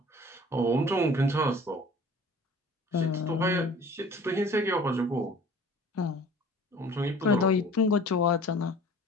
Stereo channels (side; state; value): both; normal; correlation 0.47